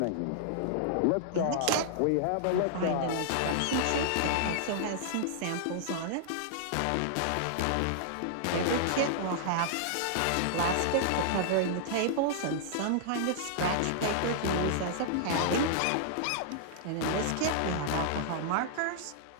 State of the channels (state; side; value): different; both; correlation -0.01